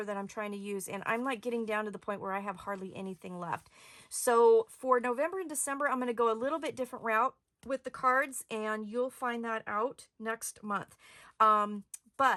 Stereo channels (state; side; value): identical; both; correlation 1.00